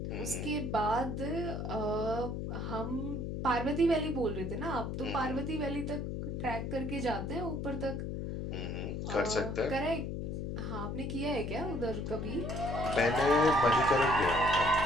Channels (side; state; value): left; noise; hum, 4 dB below the sound